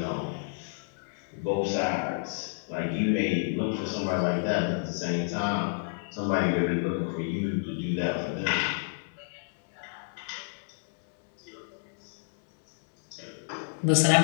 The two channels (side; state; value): right; silent; digital silence